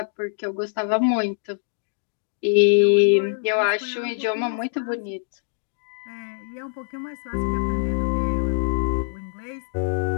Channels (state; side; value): silent; right; digital silence